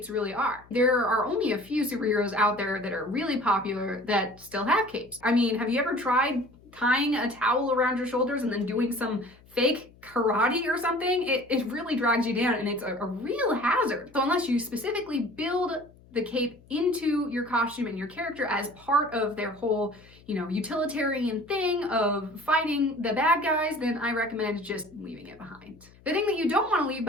really are. There are only a few superheroes out there that are really popular that still have capes. I mean, have you ever tried tying a towel around your shoulders and then doing some fake karate or something? It really drags you down, and it's a real hazard. So unless you specifically build the cape into your costume and your character as part of their whole, utilitarian thing of fighting the bad guys, then I recommend just leaving it behind. The thing that you don't want to leave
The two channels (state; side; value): noise; left; hum, 26 dB below the sound